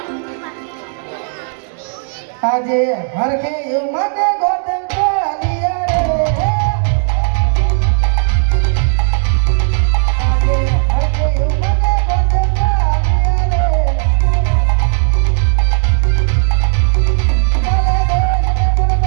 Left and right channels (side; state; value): left; silent; 70 dB below the other